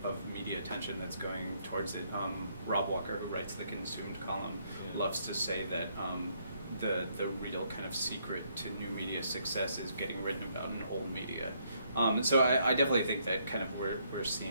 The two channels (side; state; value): both; inverted; correlation -0.72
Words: of media attention that's going towards it. Rob Walker, who writes the Consumed column, loves to say that the real kind of secret to new media success is getting written about in old media. So I definitely think that kind of we're